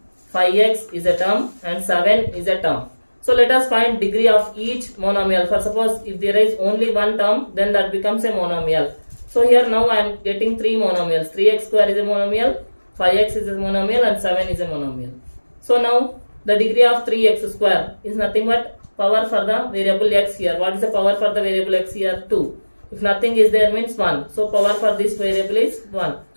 5x is a term and 7 is a term. So let us find degree of each monomial. For suppose if there is only one term, then that becomes a monomial. So here now I am getting 3 monomials. 3x square is a monomial. 5x is a monomial and 7 is a monomial. So now the degree of 3x square is nothing but power for the variable x here. What is the power for the variable x here? 2. If nothing is there means 1. So power for this variable is 1.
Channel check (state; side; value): inverted; both; correlation -1.00